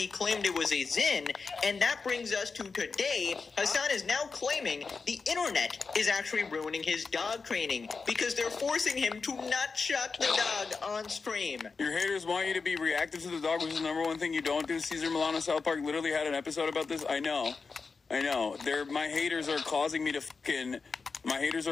claimed it was a Zin. And that brings us to today. Hassan is now claiming the internet is actually ruining his dog training because they're forcing him to not shock the dog on stream. Your haters want you to be reactive to the dog, which is the number one thing you don't do. Caesar Milano South Park literally had an episode about this. I know. My haters are causing me to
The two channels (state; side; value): quieter; right; 4.7 dB